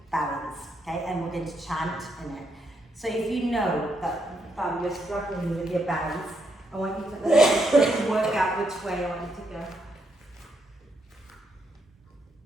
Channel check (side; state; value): both; normal; correlation 0.78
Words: balance, okay? And we're going to chant in it. So if you know that you're struggling with your balance, I want you to work out which way I want you to go.